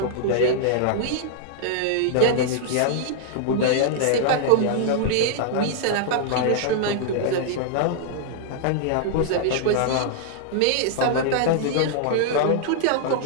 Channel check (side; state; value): both; different; correlation -0.01